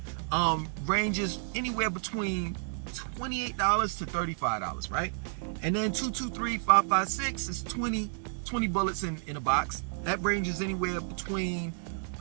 Ranges anywhere between $28 to $35, right? And then 2.23, 5.56 is 20 bullets in a box. That ranges anywhere between,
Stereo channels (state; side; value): silent; left; 57 dB below the other